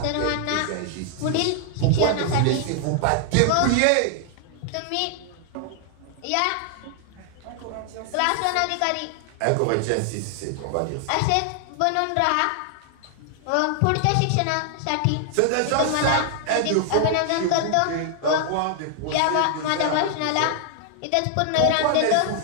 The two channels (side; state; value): both; different; correlation 0.00